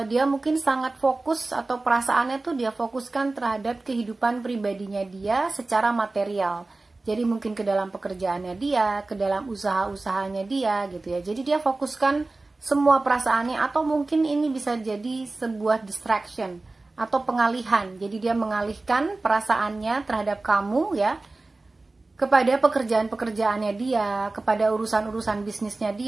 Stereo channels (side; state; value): left; quieter; 3.2 dB